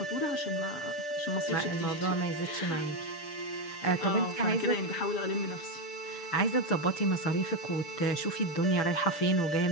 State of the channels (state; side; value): late; right; 6.8 ms